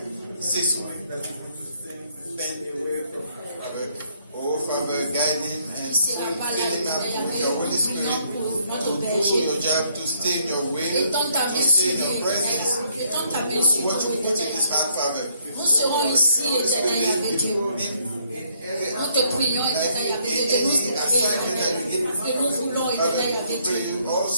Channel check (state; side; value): inverted; both; correlation -0.70